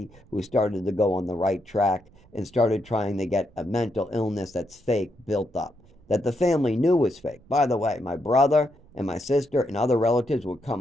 who started to go on the right track and started trying to get a mental illness that's fake built up that the family knew was fake. By the way, my brother and my sister and other relatives would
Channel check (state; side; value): noise; right; rumble, 28 dB below the sound